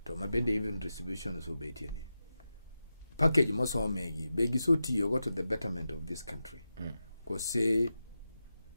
To mabende even distribution so betieni. Package mosomegi begi so tiyo to the betterment of this country. Cause say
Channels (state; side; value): inverted; both; correlation -0.91